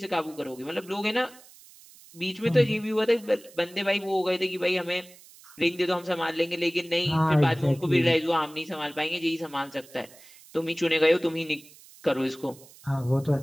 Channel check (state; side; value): noise; right; hiss, 23 dB below the sound